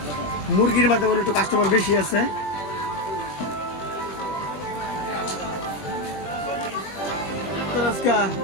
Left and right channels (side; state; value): right; late; 20 ms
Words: মুরগির মাধ্যমে একটু কাস্টমার বেশি আছে।